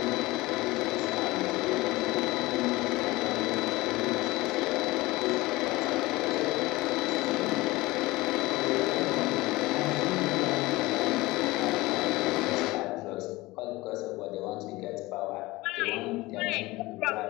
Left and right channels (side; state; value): right; quieter; 20.3 dB